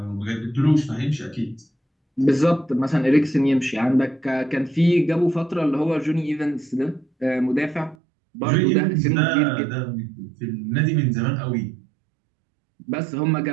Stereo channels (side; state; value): left; drops out; at 8.0 s